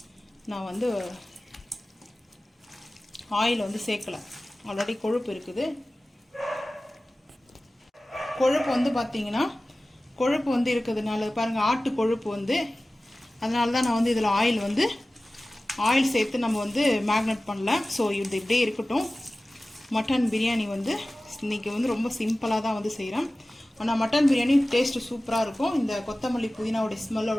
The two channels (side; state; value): both; normal; correlation 0.97